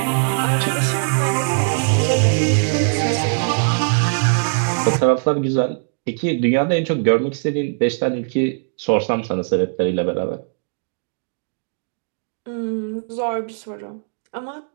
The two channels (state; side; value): silent; left; digital silence